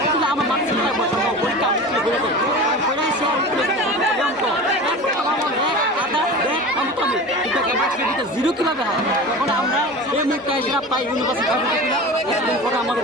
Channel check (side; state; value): both; normal; correlation 0.33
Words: কিন্তু আমার মার্কশিট পরীক্ষা জিরো কীভাবে হয় তখন আমরা এই মুখটা এসে পাই ইউনিভার্সিটি পরে